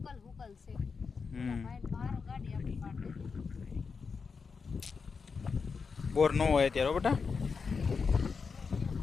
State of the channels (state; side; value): quieter; right; 5.2 dB